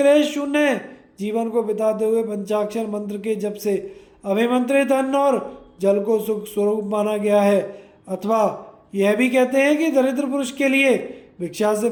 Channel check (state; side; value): identical; both; correlation 1.00